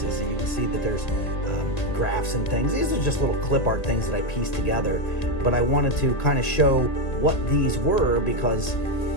So you can see that there's graphs and things. These are just little clip art things that I pieced together, but I wanted to kind of show what these were, because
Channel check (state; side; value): late; right; 1.9 ms